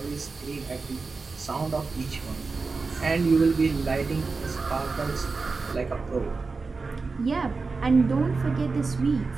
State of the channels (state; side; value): quieter; left; 4.2 dB